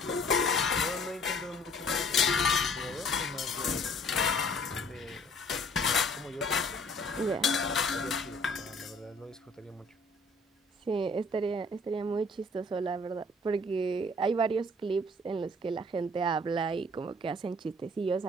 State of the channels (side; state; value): both; normal; correlation 0.56